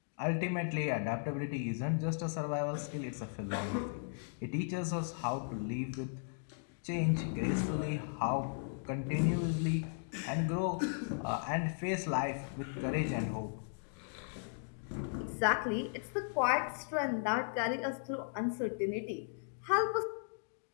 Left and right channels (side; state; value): right; silent; digital silence